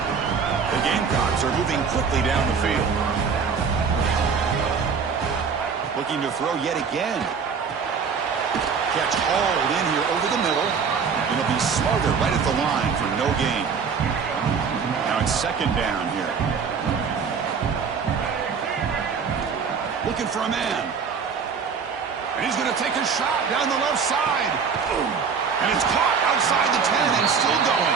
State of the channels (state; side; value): quieter; left; 6.0 dB